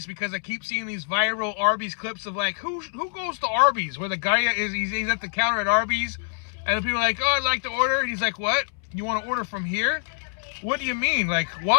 because I keep seeing these viral Arby's clips of like, who goes to Arby's? Where the guy is, he's at the counter at Arby's, and people are like, oh, I'd like to order. And he's like, what? You want to order from here? What do you mean? Like,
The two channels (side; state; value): right; silent; 61 dB below the other